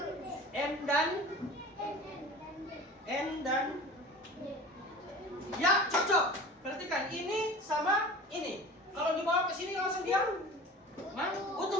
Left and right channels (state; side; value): normal; both; correlation 0.39